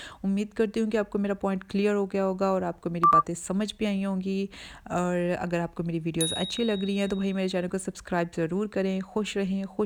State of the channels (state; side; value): identical; both; correlation 1.00